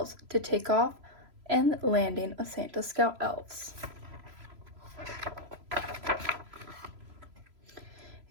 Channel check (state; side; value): late; left; 3.0 ms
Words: to take off and landing of Santa's scout elves.